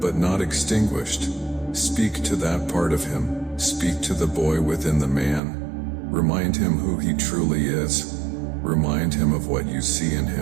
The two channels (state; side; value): drops out; left; at 5.4 s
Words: not extinguished. Speak to that part of him. Speak to the boy within the man. Remind him who he truly is. Remind him of what you see in